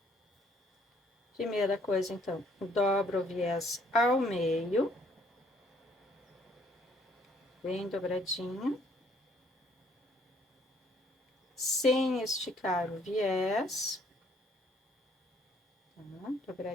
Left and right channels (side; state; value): both; normal; correlation 0.63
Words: Primeira coisa, então, dobro o viés ao meio. Bem dobradinho. Sem esticar o viés. Tá?